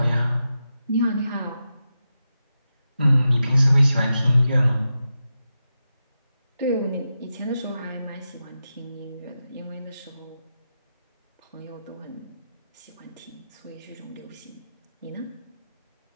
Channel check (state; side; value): inverted; both; correlation -0.89